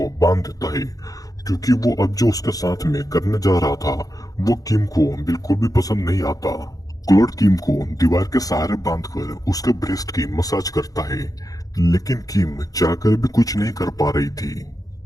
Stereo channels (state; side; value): late; right; 0.17 ms